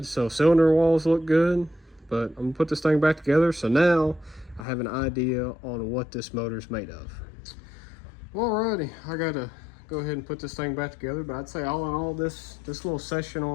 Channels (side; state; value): right; drops out; at 4.7 s